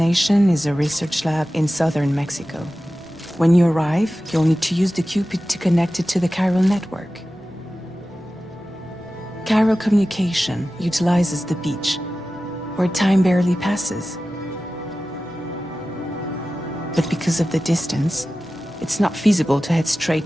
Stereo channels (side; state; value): both; normal; correlation 0.95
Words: is a research lab in southern Mexico. When you arrive, you'll need to use the Cupid to connect it to the chiral network. Chiral communication utilizes the beach, where time barely passes. But because of the distance, it's not feasible to head